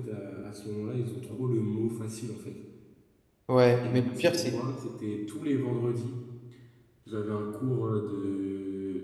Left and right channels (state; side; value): identical; both; correlation 1.00